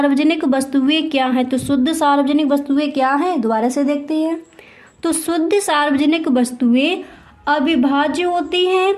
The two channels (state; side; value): identical; both; correlation 1.00